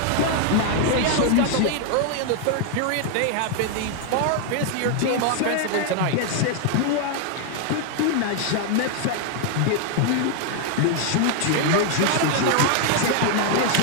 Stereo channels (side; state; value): both; different; correlation 0.00